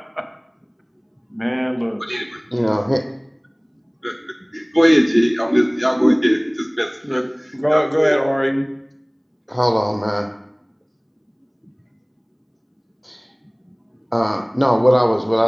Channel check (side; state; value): both; identical; correlation 1.00